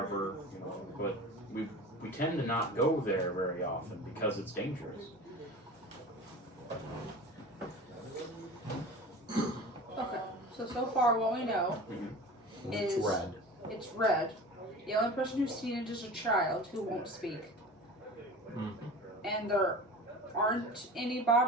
but we tend to not go there very often because it's dangerous. Okay. So far what we know is It's red. It's red. The only person who's seen it is a child who won't speak. Mm-hmm. And there aren't any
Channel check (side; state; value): both; normal; correlation 0.36